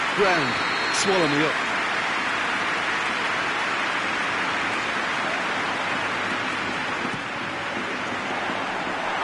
ground, swallow me up.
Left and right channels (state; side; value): identical; both; correlation 1.00